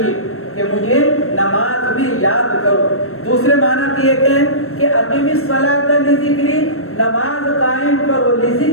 یہ کہ مجھے نماز میں یاد کرو، دوسرے معنی یہ کہ اقیم الصلاۃ لذکری، نماز قائم کرو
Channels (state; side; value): late; right; 0.63 ms